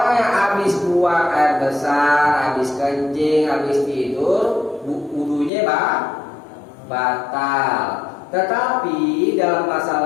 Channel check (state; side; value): drops out; right; at 5.5 s